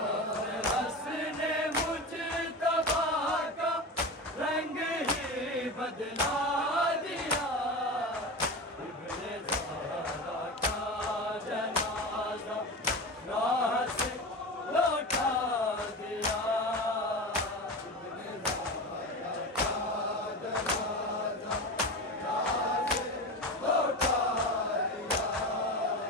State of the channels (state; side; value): normal; both; correlation 0.26